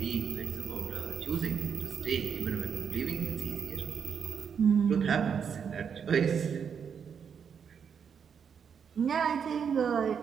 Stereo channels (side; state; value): left; quieter; 7.1 dB